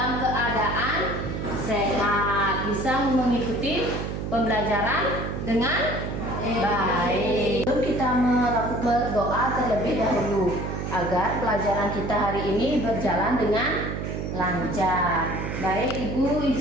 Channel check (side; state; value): right; noise; hum, 4 dB below the sound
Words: keadaan sehat, bisa mengikuti pembelajaran dengan baik. Sebelum kita melakukan berdoa terlebih dahulu agar pelajaran kita hari ini berjalan dengan lancar. Baik, Ibu